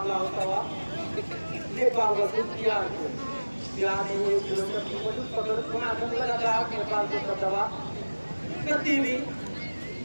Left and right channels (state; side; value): inverted; both; correlation -1.00